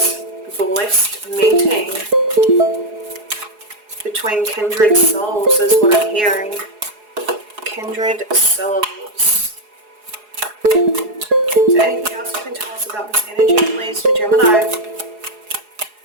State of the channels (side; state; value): left; late; 4.8 ms